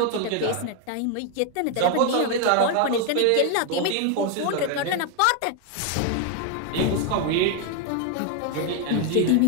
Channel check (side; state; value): both; different; correlation 0.01